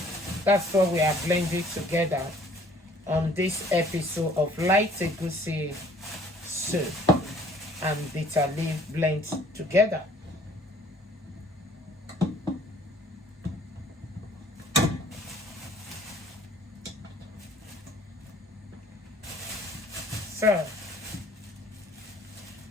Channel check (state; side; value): normal; both; correlation 0.57